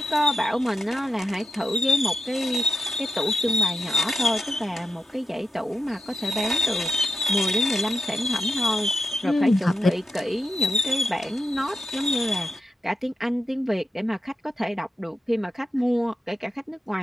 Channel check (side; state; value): both; normal; correlation 0.86